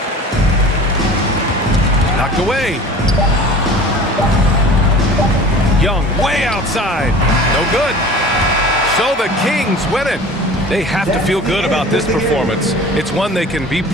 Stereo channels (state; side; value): normal; both; correlation 0.41